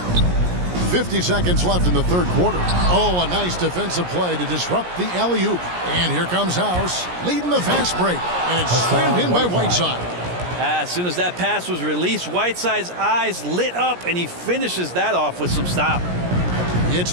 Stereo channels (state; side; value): late; left; 17 ms